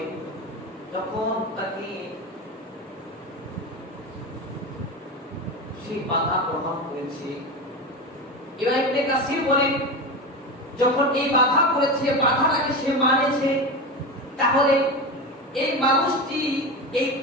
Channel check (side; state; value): both; normal; correlation 0.22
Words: যখন তাকে সেই বাধা গ্রহণ করেছে, এবার ইবনে কাসির বলেন, যখন এই বাধা করেছে, বাধাটাকে সে মানেছে, তাহলে এই মানুষটি এই